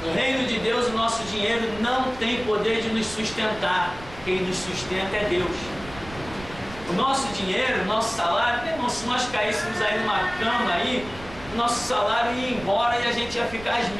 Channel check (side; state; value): right; noise; rumble, 17 dB below the sound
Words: No reino de Deus o nosso dinheiro não tem poder de nos sustentar. Quem nos sustenta é Deus. O nosso dinheiro, o nosso salário, meu irmão, se nós caíssemos aí numa cama aí, o nosso salário ia embora e a gente ia ficar às